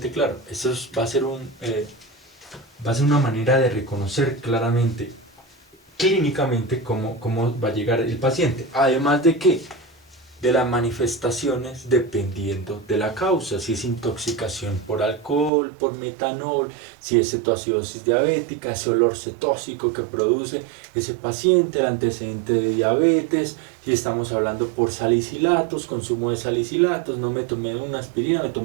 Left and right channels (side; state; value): left; drops out; at 15.5 s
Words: claro. Eso va a ser una manera de reconocer claramente, clínicamente, cómo va a llegar el paciente. Además de que de las manifestaciones dependiendo de la causa, si es intoxicación por alcohol, por metanol, si es cetoacidosis diabética, ese olor cetóxico que produce ese paciente, el antecedente de diabetes, si estamos hablando por salicilatos, consumo de salicilatos, no me tomé una aspirina, me